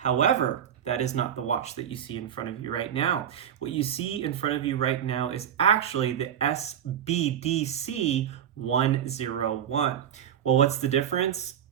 that is not the watch that you see in front of you right now. What you see in front of you right now is actually the SBDC101. Well, what's the difference?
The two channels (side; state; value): left; quieter; 9.5 dB